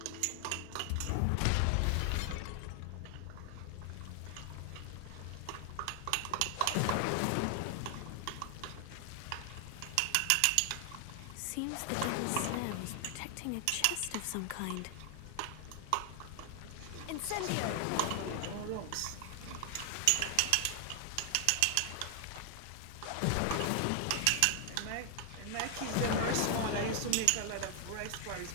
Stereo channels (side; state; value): both; different; correlation 0.00